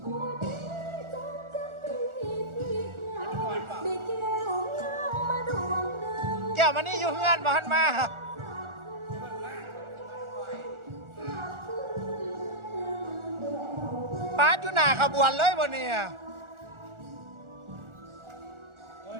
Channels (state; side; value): late; left; 1.4 ms